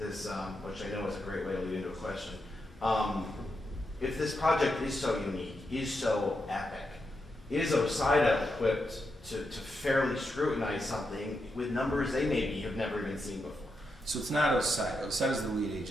I know is a great way to lead into a question. If this project is so unique, is so epic, is OSIDA equipped to fairly scrutinize something with numbers they maybe have never even seen before? So it's not OSIDA. OSIDA is the lead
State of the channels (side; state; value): both; normal; correlation 0.85